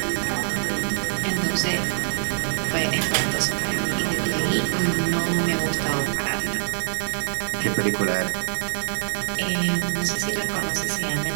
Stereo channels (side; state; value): left; silent; digital silence